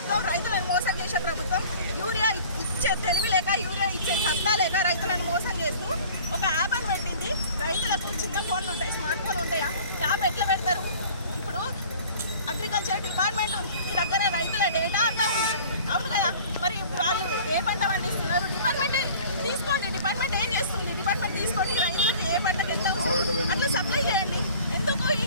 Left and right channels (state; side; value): inverted; both; correlation -0.47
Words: ప్రభుత్వం రైతులను మోసం చేసే ప్రభుత్వం. యూరియా ఇచ్చే తెలివి లేక, యూరియా ఇచ్చే సత్తా లేక రైతులను మోసం చేస్తూ ఒక యాప్ అని పెట్టింది. రైతులకు చిన్న ఫోన్లు ఉంటాయి, స్మార్ట్ ఫోన్ ఉంటాయా? యాప్ ఎట్లా పెడతారు? ఇప్పుడు అగ్రికల్చర్ డిపార్ట్మెంట్ ఉంది, మీ దగ్గర రైతుల డేటా అంతా ఉంది, అవును కదా? మరి వాళ్ళు ఏ పంట పండిస్తున్నారు? డిపార్ట్మెంట్ తీసుకోండి. డిపార్ట్మెంట్ ఏం చేస్తుంది? డిపార్ట్మెంట్ తీసుకొని రైతులకు ఏ పంటకు ఎంత అవసరం అట్లా సప్లై చేయండి. ఎందుకు ఈ